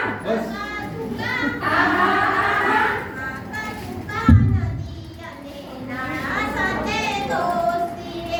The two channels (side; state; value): both; identical; correlation 1.00